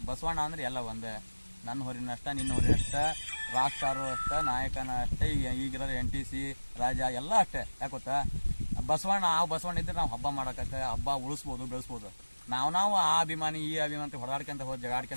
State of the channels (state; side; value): inverted; both; correlation -1.00